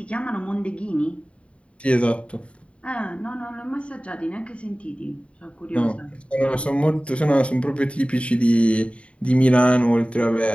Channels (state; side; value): late; right; 0.061 ms